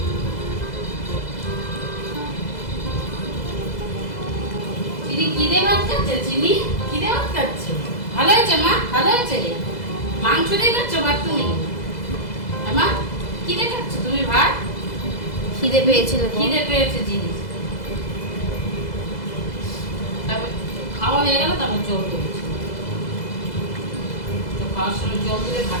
চিনি কি দিয়ে ভাত খাচ্ছে? চিনি কি দিয়ে ভাত খাচ্ছে? ভালো হয়েছে মা, ভালো হয়েছে। মাংস দিয়ে খাচ্ছ ভাত তুমি? মা কি দিয়ে খাচ্ছ তুমি ভাত? খিদে পেয়েছিল। খিদে পেয়েছে জিনিস। তারপর খাওয়া হয়ে গেল, তারপর জল দিয়েছি। তো খাওয়ার সময় জল দিলে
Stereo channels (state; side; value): late; right; 2.0 ms